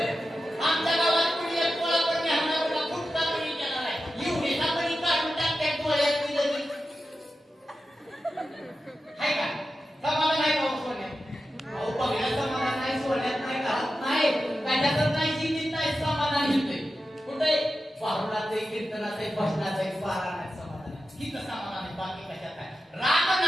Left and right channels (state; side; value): normal; both; correlation 0.92